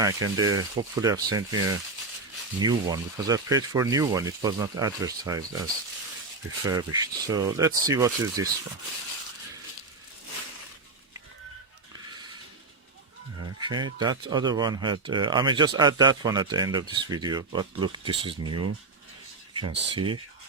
and they hopefully have sent me a new one, because I paid for a new one. It was not advertised as refurbished. So let's see what is this one. Okay, that other one had I may just add that one at the end of this video, but look, this is new. You can see.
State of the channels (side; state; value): left; quieter; 3.7 dB